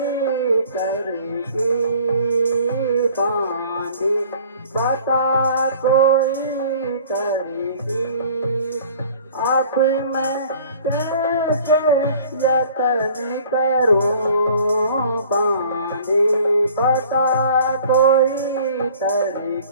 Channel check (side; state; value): both; inverted; correlation -0.50